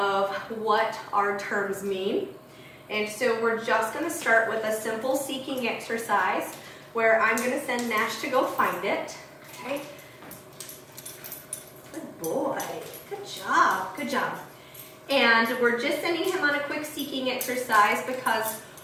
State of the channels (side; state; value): both; identical; correlation 1.00